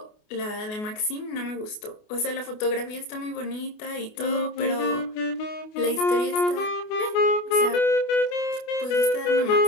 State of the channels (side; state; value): right; late; 28 ms